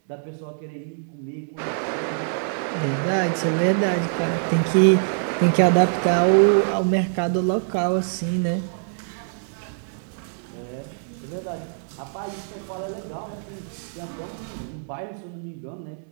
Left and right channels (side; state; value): left; silent; digital silence